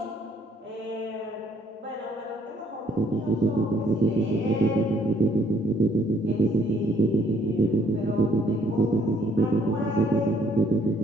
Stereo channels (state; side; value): normal; both; correlation 0.64